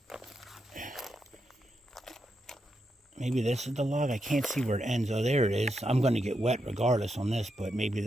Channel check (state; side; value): normal; both; correlation 0.84